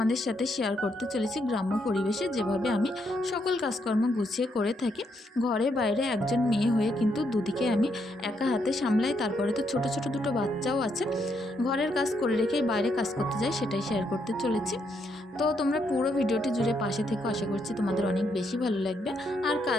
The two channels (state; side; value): normal; both; correlation 0.77